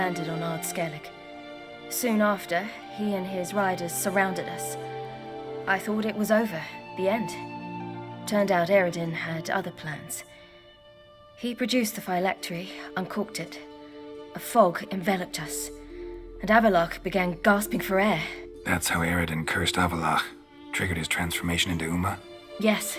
on Ard Skellig. Soon after, he and his riders surrounded us. I thought it was over, the end. Turned out Eredin had other plans. He produced the phylactery, uncorked it. A fog enveloped us, and Avallac'h began gasping for air. That's how Eredin cursed Avallac'h, triggered his transformation into Uma? Yes.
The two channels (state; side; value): identical; both; correlation 1.00